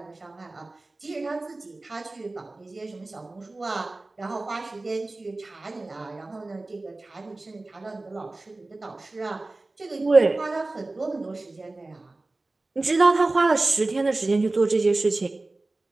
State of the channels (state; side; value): quieter; left; 3.1 dB